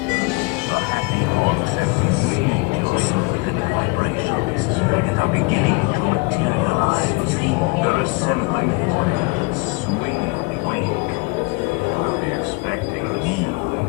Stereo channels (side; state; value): right; quieter; 28.3 dB